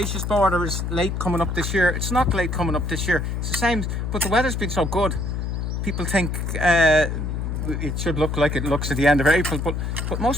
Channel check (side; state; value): left; noise; hum, 2 dB below the sound